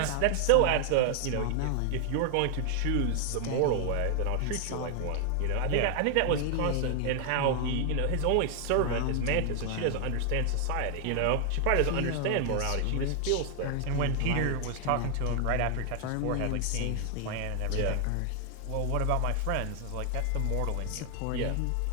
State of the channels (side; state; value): both; different; correlation 0.00